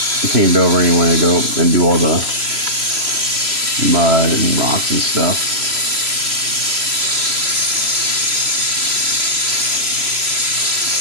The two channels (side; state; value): left; late; 3.0 ms